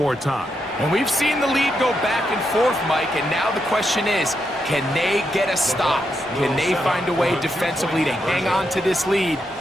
time. And we've seen the lead go back and forth, Mike, and now the question is, can they get a stop? Can they find a way defensively to hang on to this lead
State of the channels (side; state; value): both; normal; correlation 0.83